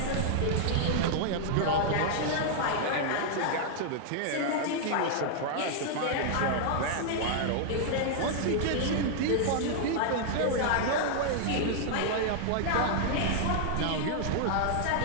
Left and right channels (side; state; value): both; different; correlation -0.01